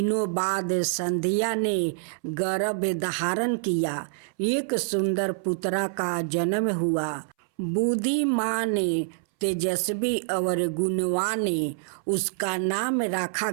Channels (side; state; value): left; silent; 61 dB below the other